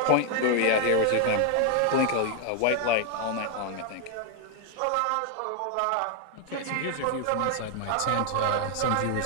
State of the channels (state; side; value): different; both; correlation 0.00